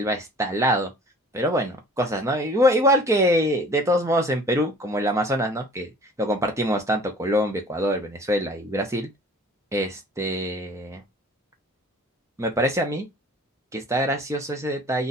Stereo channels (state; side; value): normal; both; correlation 0.48